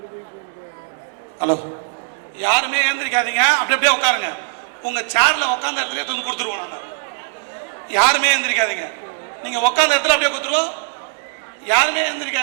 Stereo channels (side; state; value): left; silent; digital silence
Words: ஹலோ, யாருமே எழுந்திருக்காதீங்க, அப்படியே உட்காருங்க. உங்க சேர்ல உட்காந்த இடத்துல தூக்கி கொடுத்துருவோம். நாங்கள் யாருமே எழுந்திருக்காதீங்க, நீங்க உட்காந்த இடத்துல அப்படியே கொடுத்துருவோம். யாருமே